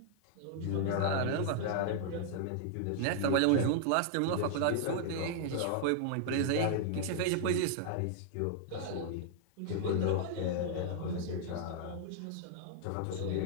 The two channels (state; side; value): different; both; correlation -0.01